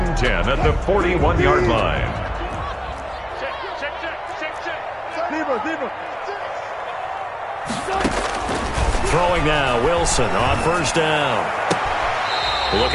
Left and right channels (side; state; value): both; identical; correlation 1.00